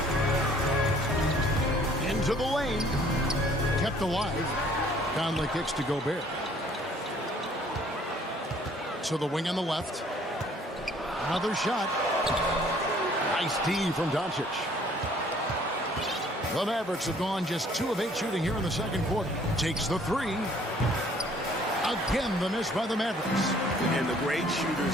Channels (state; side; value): normal; both; correlation 0.58